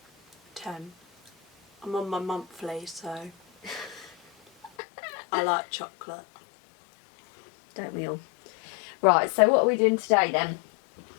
10. I'm on my monthly, so I like chocolate. Don't we all? Right, so what are we doing today then?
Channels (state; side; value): drops out; right; at 4.7 s